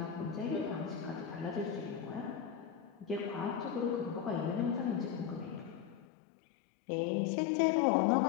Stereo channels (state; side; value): drops out; right; at 6.1 s